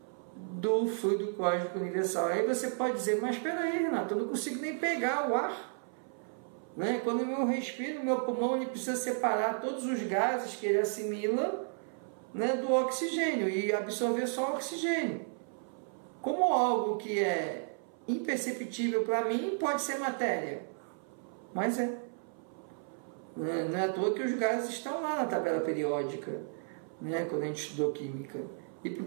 do fluido cósmico universal. Aí você pode dizer: mas espera aí, Renato, eu não consigo nem pegar o ar, né? Quando eu respiro, meu pulmão ele precisa separar todos os gases que ele assimila, né, do oxigênio e absorver só o oxigênio. Como algo que é imperceptível para mim pode ser matéria, mas não é à toa que os gases estão lá na tabela periódica, né, quando a gente estudou química. E por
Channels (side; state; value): left; silent; 56 dB below the other